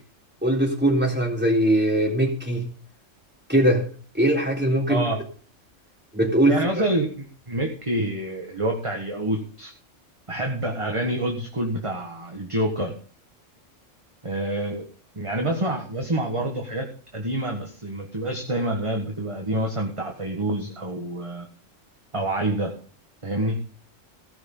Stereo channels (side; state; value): both; normal; correlation 0.18